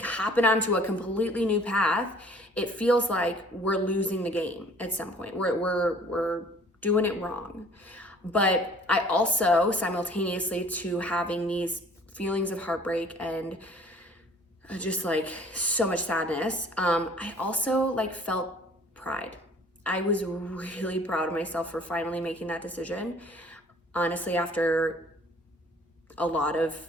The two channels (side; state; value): both; normal; correlation 0.53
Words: hopping onto a completely new path. It feels like we're losing the game at some point. We're doing it wrong. But I also, simultaneously to having these feelings of heartbreak and just like so much sadness, I also like felt pride. I was really proud of myself for finally making that decision. Honestly, after a lot of